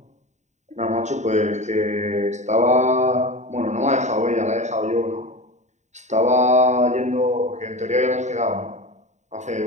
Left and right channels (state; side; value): late; left; 0.34 ms